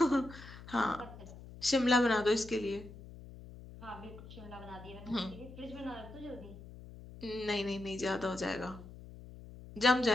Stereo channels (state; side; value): noise; left; hum, 16 dB below the sound